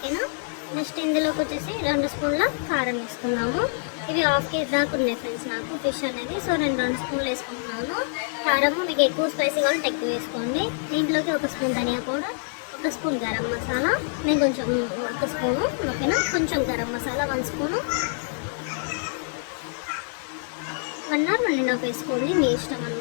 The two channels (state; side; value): silent; right; digital silence